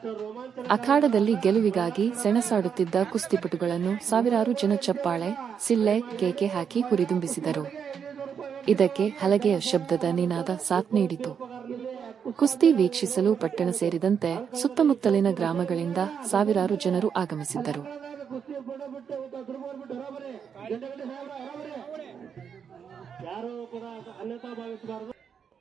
ಅಖಾಡದಲ್ಲಿ ಗೆಲುವಿಗಾಗಿ ಸೆಣಸಾಡುತ್ತಿದ್ದ ಕುಸ್ತಿಪಟುಗಳನ್ನು ಸಾವಿರಾರು ಜನ ಚಪ್ಪಾಳೆ, ಸಿಳ್ಳೆ, ಕೇಕೆ ಹಾಕಿ ಹುರಿದುಂಬಿಸಿದರು. ಇದಕ್ಕೆ ಹಲಗೆಯ ಶಬ್ದದ ನಿನಾದ ಸಾಥ್ ನೀಡಿತು. ಕುಸ್ತಿ ವೀಕ್ಷಿಸಲು ಪಟ್ಟಣ ಸೇರಿದಂತೆ ಸುತ್ತಮುತ್ತಲಿನ ಗ್ರಾಮಗಳಿಂದ ಸಾವಿರಾರು ಜನರು ಆಗಮಿಸಿದ್ದರು.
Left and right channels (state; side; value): quieter; left; 7.2 dB